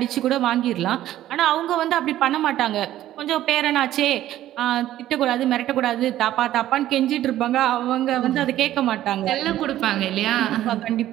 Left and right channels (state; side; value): quieter; left; 13.4 dB